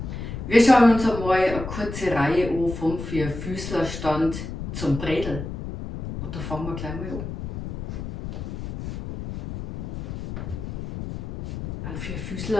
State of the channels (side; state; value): left; noise; rumble, 7 dB below the sound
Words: Wir schauen uns einmal eine kurze Reihe an vom Vierfüßlerstand zum Bredel. Und da fangen wir gleich mal an. Ein